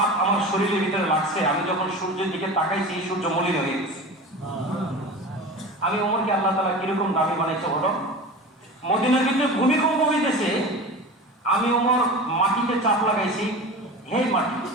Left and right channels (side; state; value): both; normal; correlation 0.32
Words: আমার শরীরের ভিতরে লাগছে, আমি যখন সূর্যের দিকে তাকাইছি সূর্য মলিন হয়ে গেছে। আমি ওমরকে আল্লাহ তাআলা কিরকম দামি বানাইছে বলো। মদিনার ভিতরে ভূমিকম্প হইতেছে, আমি ওমর মাটিতে চাপ লাগাইছি, হে মাটি